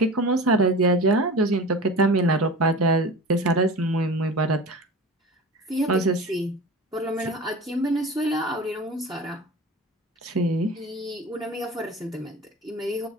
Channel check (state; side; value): normal; both; correlation 0.34